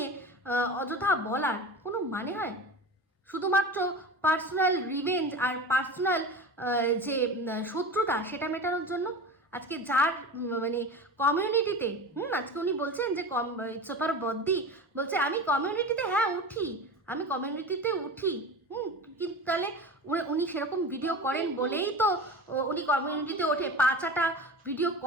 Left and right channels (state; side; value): normal; both; correlation 0.31